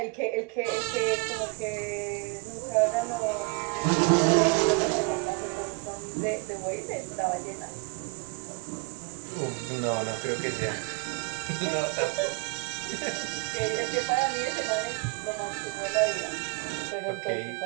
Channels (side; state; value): left; quieter; 29.7 dB